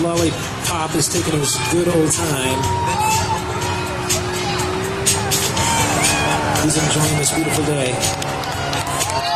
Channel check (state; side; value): identical; both; correlation 1.00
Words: is taking his good old time. He's enjoying this beautiful day.